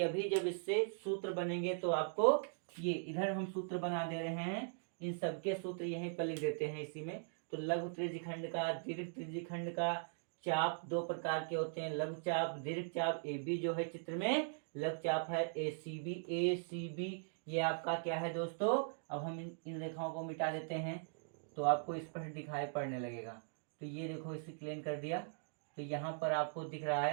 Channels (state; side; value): silent; left; digital silence